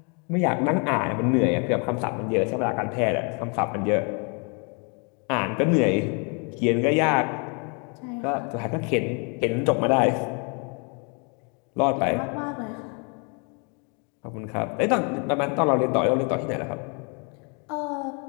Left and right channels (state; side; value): quieter; right; 35.3 dB